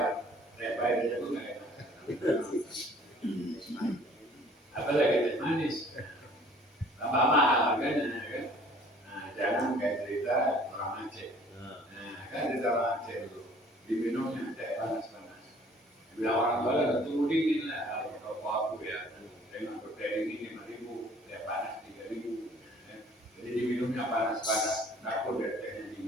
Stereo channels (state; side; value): normal; both; correlation 0.54